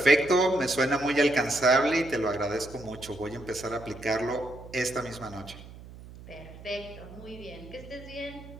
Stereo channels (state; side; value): noise; right; hum, 17 dB below the sound